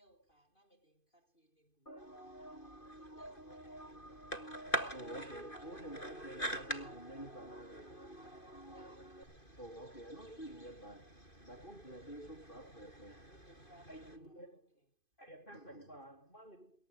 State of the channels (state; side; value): late; right; 2.5 ms